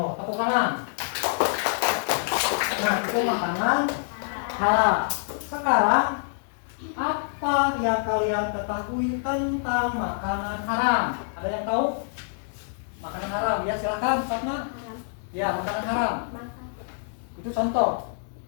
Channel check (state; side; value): silent; right; digital silence